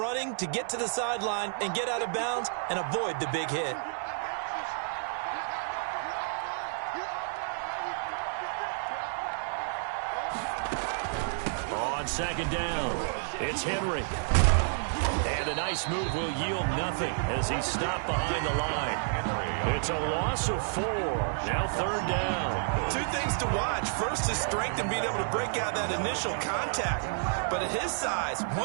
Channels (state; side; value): silent; left; digital silence